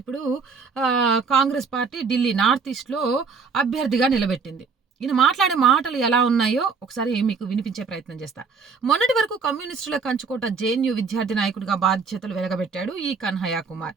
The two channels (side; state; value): left; quieter; 5.1 dB